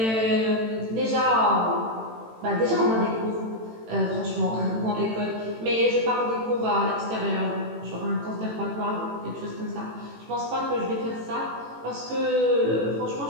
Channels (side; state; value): left; late; 18 ms